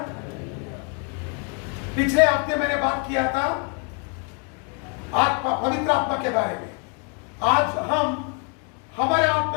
पिछले हफ्ते मैंने बात किया था आत्मा, पवित्र आत्मा के बारे में। आज हम हमारे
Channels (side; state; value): right; quieter; 38.5 dB